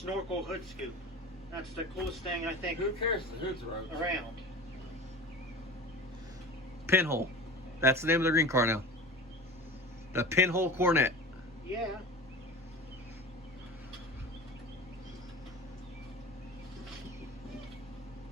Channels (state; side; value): normal; both; correlation 0.34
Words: hood scoop. That's the coolest thing I think Who cares? The hood's road. around. Pinhole. That's the name of the green car now. The Pinhole Coronet. Yeah.